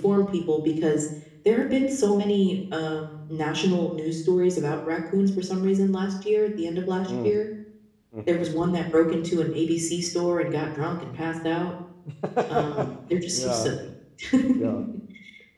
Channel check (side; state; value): both; identical; correlation 1.00